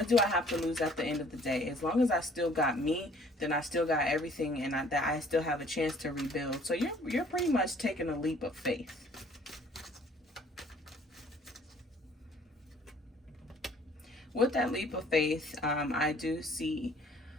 do I have to lose at the end of the day? As long as I still got me, then I still got everything, and that I still have a chance to rebuild. So you're pretty much taking a leap of faith. With that leap of faith, I do see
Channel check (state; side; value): normal; both; correlation 0.56